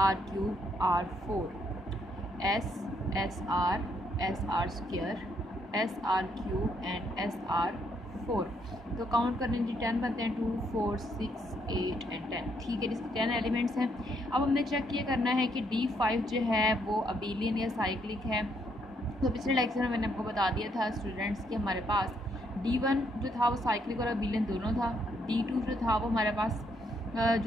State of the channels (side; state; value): both; normal; correlation 0.73